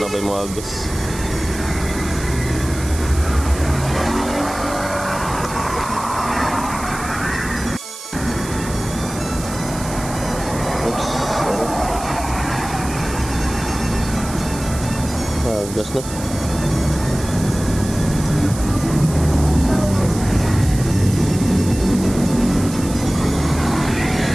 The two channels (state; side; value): noise; right; hiss, 12 dB below the sound